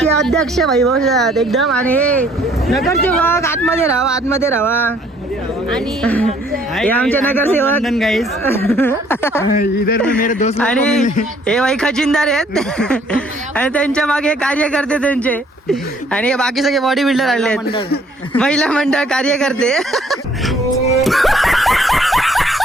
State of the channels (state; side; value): normal; both; correlation 0.61